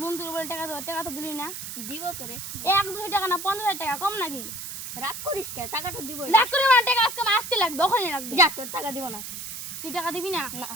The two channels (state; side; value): noise; right; hiss, 8 dB below the sound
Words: তুলে বলে টাকা তো দিলি না দিব তো রে 1-2 টাকা না 50 টাকা কম নাকি রাগ করিস কে টাকাটা দিব রাগ করে না টাকা আজকে আসতে লাগবে ওখানে লাগবে যা তোর টাকা দিব না তুই টাকা দিবি না না